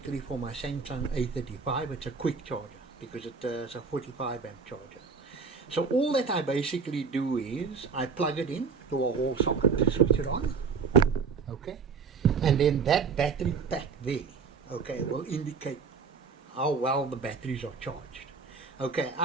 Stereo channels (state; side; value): quieter; left; 5.4 dB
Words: for my Samsung A35. It's a quick charger because it's a 45 amp charger. So all that I basically do is I plug it in to a wall socket, switch it on. Okay, and then that battery pack there, okay, will indicate how well the batteries are charged. Okay,